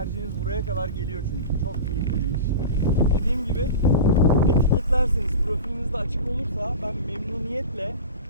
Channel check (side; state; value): both; inverted; correlation -0.30